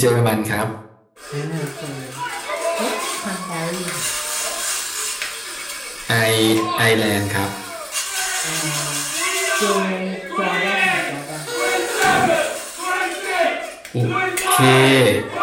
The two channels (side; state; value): both; identical; correlation 1.00